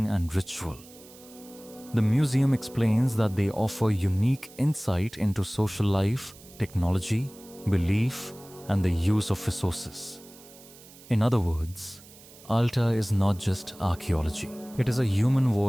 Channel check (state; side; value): noise; right; hiss, 21 dB below the sound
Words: and ritual. The museum explains that they offer unique insight into social life, technology, belief, and the use of resources. In other words, Alta is not just archaeology. It is a human